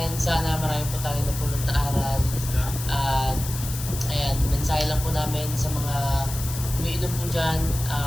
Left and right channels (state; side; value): noise; left; hiss, 9 dB below the sound